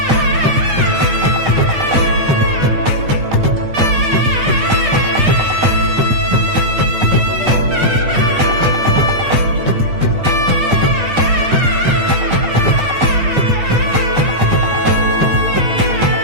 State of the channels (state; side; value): late; left; 8.3 ms